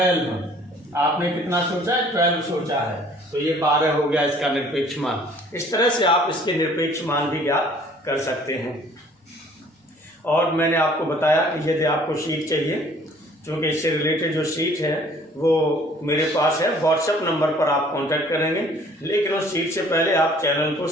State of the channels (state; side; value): normal; both; correlation 0.55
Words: आपने कितना सोचा है, 12 सोचा है, तो ये 12 हो गया इसका निरपेक्ष मान। इस तरह से आप इसके निरपेक्ष मान भी ज्ञात कर सकते हैं। और मैंने आपको बताया कि यदि आपको शीट चाहिए, क्योंकि इससे रिलेटेड जो शीट है वो मेरे पास है, व्हाट्सएप नंबर पर आप कांटेक्ट करेंगे, लेकिन उस शीट से पहले आप चैनल को